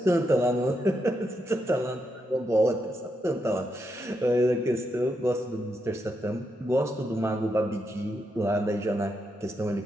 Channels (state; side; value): normal; both; correlation 0.82